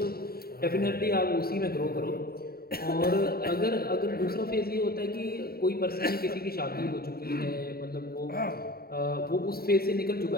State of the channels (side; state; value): right; late; 0.45 ms